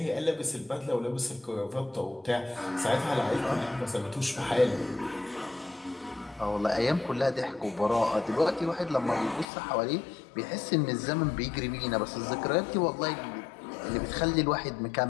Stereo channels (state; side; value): drops out; right; at 9.5 s